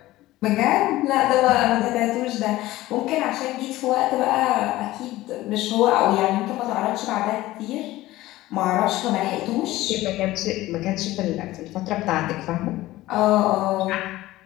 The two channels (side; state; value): right; quieter; 17.0 dB